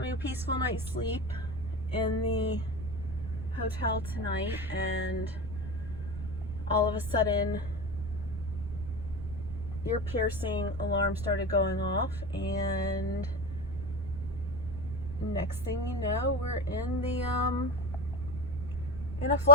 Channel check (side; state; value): right; noise; rumble, 9 dB below the sound